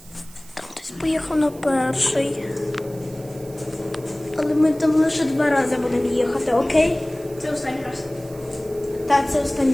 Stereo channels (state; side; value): noise; right; hiss, 22 dB below the sound